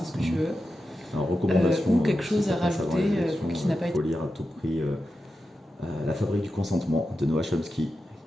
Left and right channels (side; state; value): both; normal; correlation 0.90